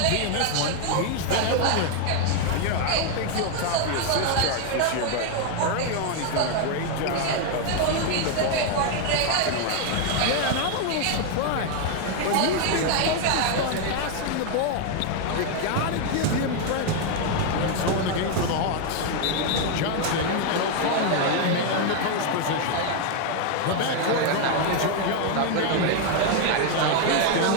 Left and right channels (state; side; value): different; both; correlation 0.01